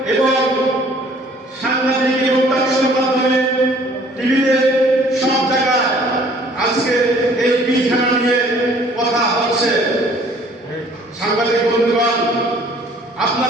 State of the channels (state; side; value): normal; both; correlation 0.56